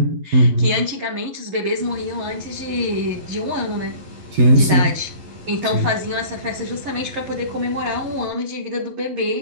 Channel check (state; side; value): late; left; 11 ms